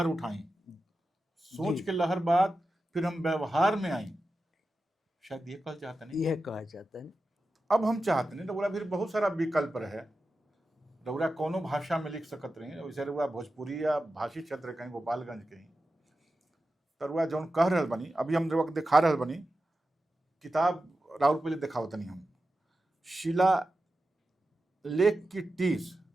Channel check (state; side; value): normal; both; correlation 0.92